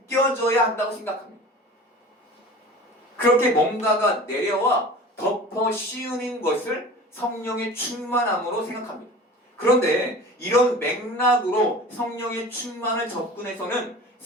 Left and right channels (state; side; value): normal; both; correlation 0.39